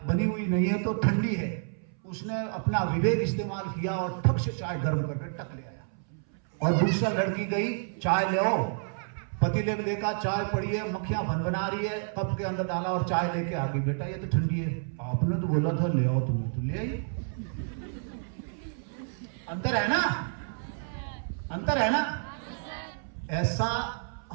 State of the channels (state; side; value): silent; left; 58 dB below the other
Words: बनी हुई नहीं है तो ठंडी है, उसने अपना विवेक इस्तेमाल किया और ठक से चाय गर्म करके टक ले आया। और दूसरा लड़की गई, चाय ले आओ, पतीले में देखा चाय पड़ी है, मक्खियां भनभना रही है, कप के अंदर डाला और चाय लेके आ गई। बेटा ये तो ठंडी है, आपने तो बोला था ले आओ, तुम्हें तो ले आई। अंतर है ना, अंतर है ना। ऐसा